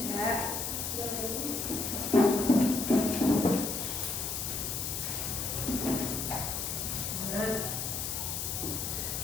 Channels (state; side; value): noise; left; hiss, 2 dB below the sound